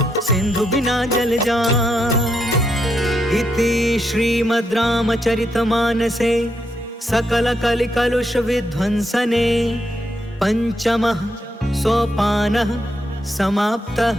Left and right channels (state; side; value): normal; both; correlation 0.80